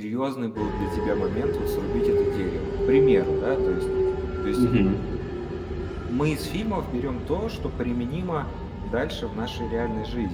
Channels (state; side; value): identical; both; correlation 1.00